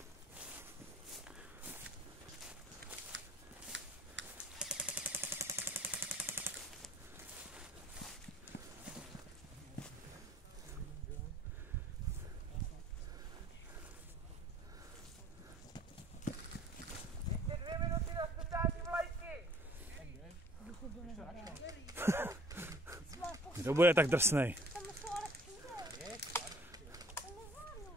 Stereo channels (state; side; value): normal; both; correlation 0.54